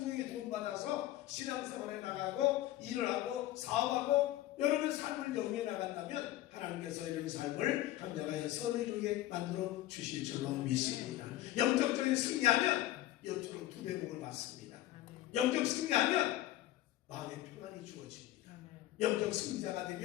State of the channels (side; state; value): right; quieter; 14.9 dB